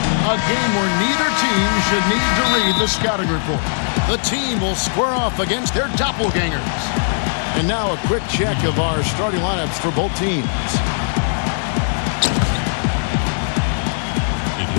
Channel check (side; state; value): right; silent; digital silence